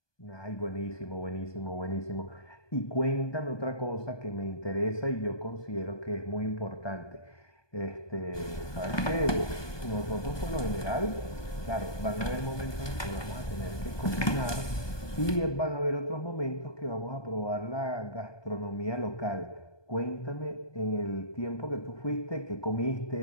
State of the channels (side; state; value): right; late; 1.2 ms